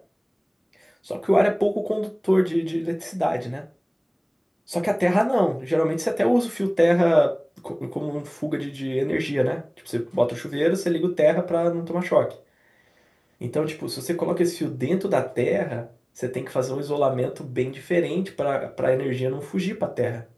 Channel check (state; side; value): identical; both; correlation 1.00